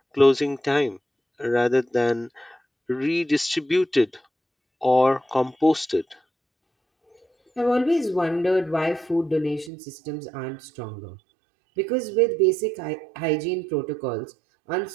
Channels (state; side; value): drops out; left; at 9.7 s